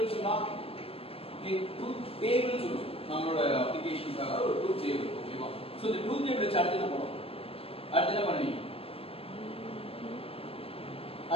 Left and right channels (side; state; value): right; late; 0.28 ms